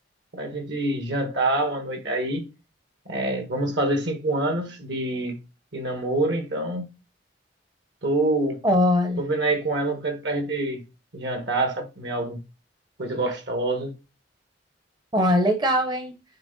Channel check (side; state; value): both; normal; correlation 0.29